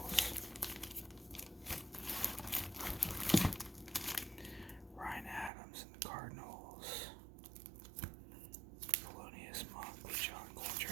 Ryan Adams and the Cardinals. Thelonious Monk with John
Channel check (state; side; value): drops out; left; at 5.5 s